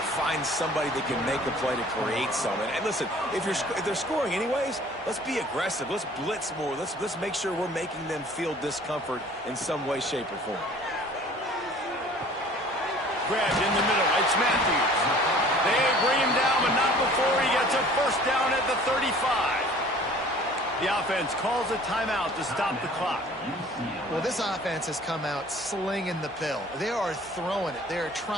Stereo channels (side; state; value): both; normal; correlation 0.50